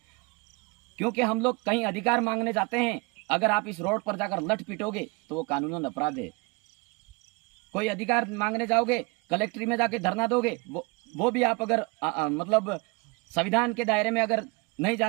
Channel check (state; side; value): quieter; left; 28.7 dB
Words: क्योंकि हम लोग कहीं अधिकार मांगने जाते हैं, अगर आप इस रोड पर जाकर लठ पिटोगे तो वो कानूनन अपराध है। कोई अधिकार मांगने जाओगे, कलेक्ट्री में जाके धरना दोगे, वो भी आप अगर मतलब संविधान के दायरे में अगर नहीं